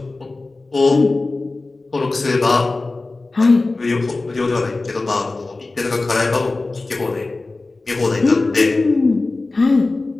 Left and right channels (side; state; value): right; quieter; 3.4 dB